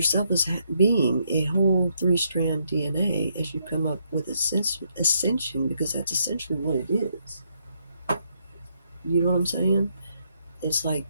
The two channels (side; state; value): both; inverted; correlation -0.75